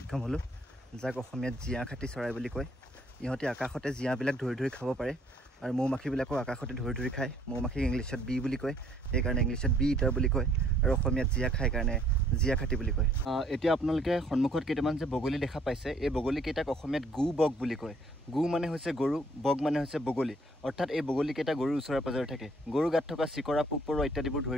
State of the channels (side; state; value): both; normal; correlation 0.63